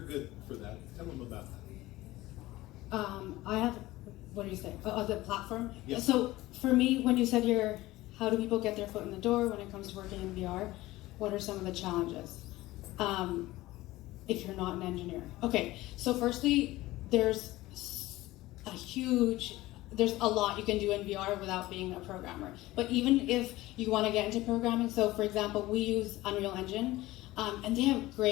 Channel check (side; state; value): right; quieter; 17.9 dB